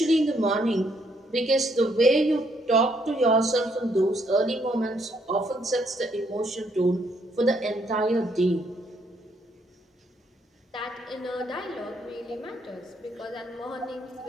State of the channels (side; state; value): both; normal; correlation 0.71